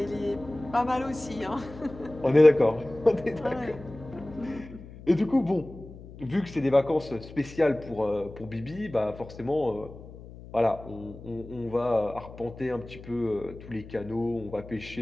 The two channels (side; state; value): left; noise; hum, 16 dB below the sound